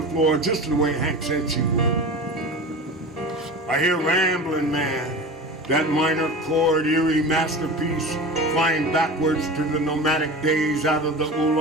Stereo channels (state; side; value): normal; both; correlation 0.32